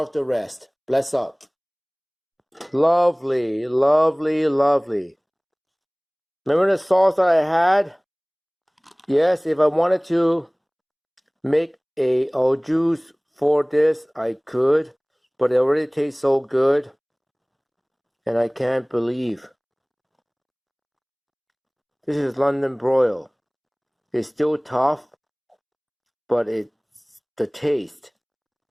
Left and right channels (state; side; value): identical; both; correlation 1.00